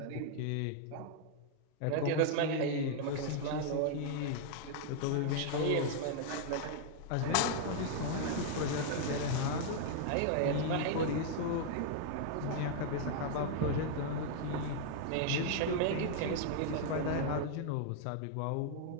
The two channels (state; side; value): different; both; correlation -0.01